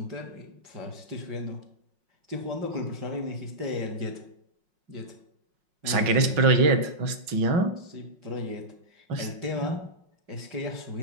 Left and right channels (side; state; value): left; late; 5.5 ms